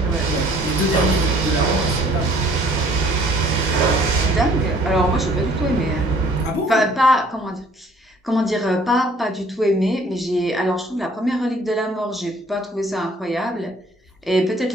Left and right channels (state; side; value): normal; both; correlation 0.57